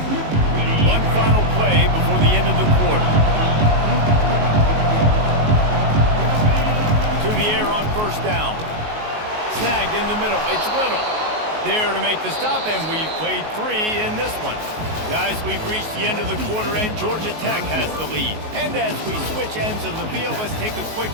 One final play before the end of the quarter. To the air on first down. Snagged in the middle. It's Little. There to make the stop, and we've played 3 in this one. Guys, we've reached the end of the quarter, and Georgia Tech has the lead. And as we switch ends of the field, let's take a quick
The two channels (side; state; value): left; late; 19 ms